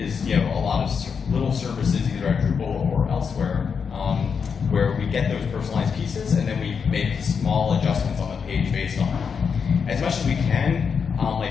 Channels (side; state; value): right; quieter; 6.2 dB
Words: a lot of little services either at Drupal or elsewhere where we get those personalized pieces and then we make small adjustments on the page based on them. As much as we can.